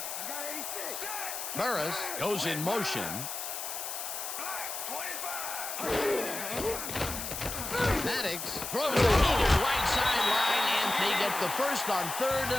Burris goes in motion. Maddox throws it to the right sideline, and they get the first on 3rd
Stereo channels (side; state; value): left; noise; hiss, 5 dB below the sound